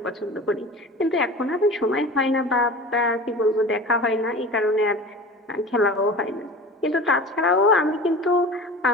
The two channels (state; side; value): normal; both; correlation 0.36